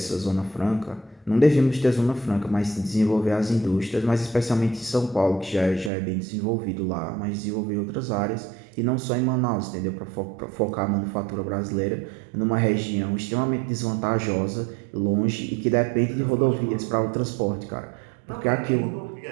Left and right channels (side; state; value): left; drops out; at 5.9 s